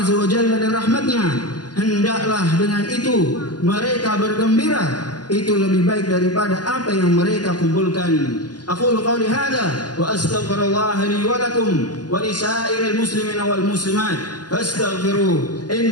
Azza wa Jalla dan rahmatnya, hendaklah dengan itu mereka bergembira. Itu lebih baik daripada apa yang mereka kumpulkan. Aqulu qawli hadha wa astaghfirullah li wa lakum wa li sa'iril muslimina wal muslimat fastaghfiruh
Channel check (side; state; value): right; late; 0.70 ms